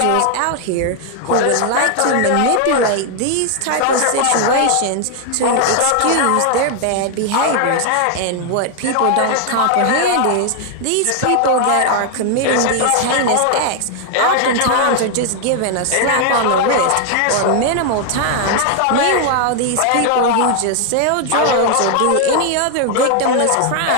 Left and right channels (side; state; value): both; different; correlation 0.00